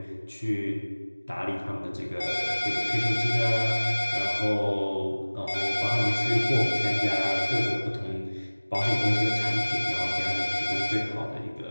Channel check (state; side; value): inverted; both; correlation -1.00